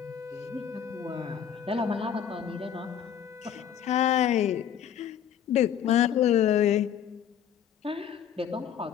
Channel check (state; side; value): quieter; right; 9.0 dB